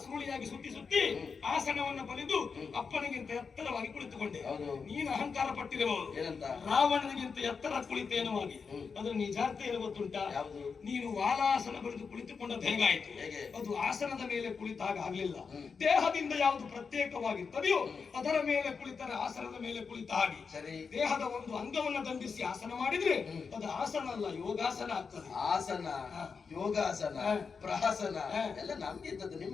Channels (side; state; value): right; quieter; 5.4 dB